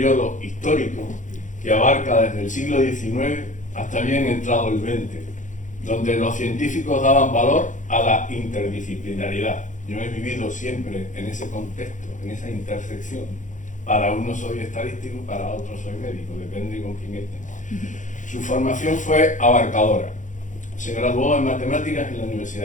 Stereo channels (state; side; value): late; right; 0.36 ms